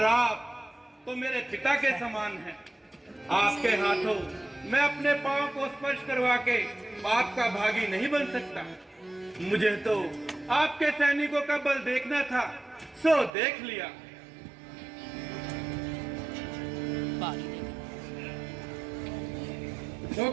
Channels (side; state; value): left; drops out; at 13.3 s